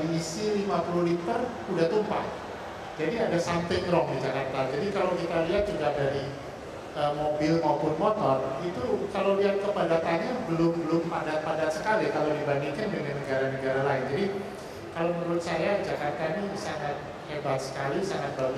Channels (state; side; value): identical; both; correlation 1.00